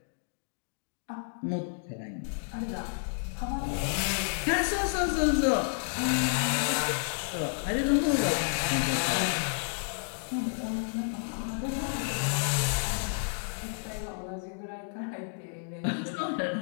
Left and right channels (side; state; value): right; silent; digital silence